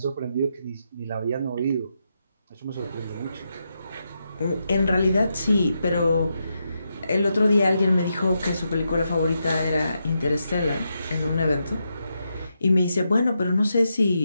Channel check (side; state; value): both; inverted; correlation -0.84